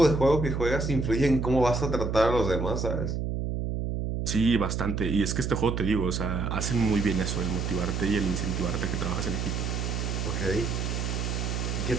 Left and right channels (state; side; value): noise; right; hum, 2 dB below the sound